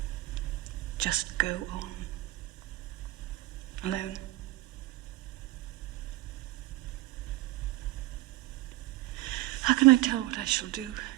Just go on. Alone. How can I tell what I shall do?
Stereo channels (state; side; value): quieter; left; 18.1 dB